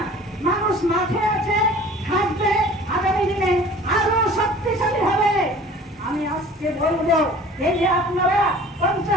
মানুষ মাঠে আছে, থাকবে, আগামী দিনে আরো শক্তিশালী হবে। আমি আজকে বলবো, এই যে আপনারা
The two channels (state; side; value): normal; both; correlation 0.46